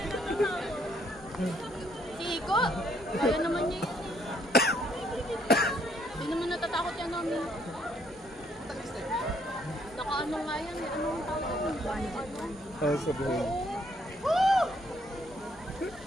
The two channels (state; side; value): normal; both; correlation 0.68